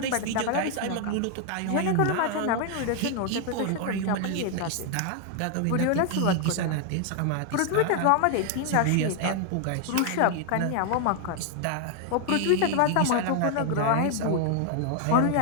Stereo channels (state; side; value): different; both; correlation 0.00